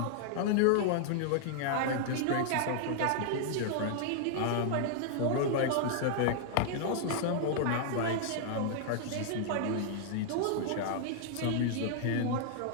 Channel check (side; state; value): both; different; correlation -0.01